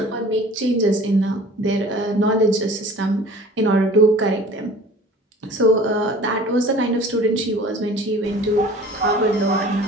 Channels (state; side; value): normal; both; correlation 0.45